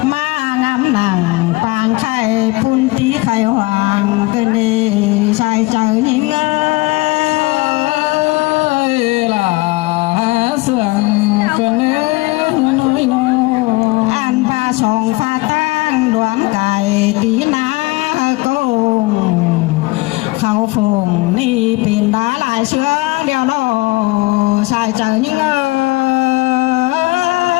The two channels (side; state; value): right; quieter; 22.7 dB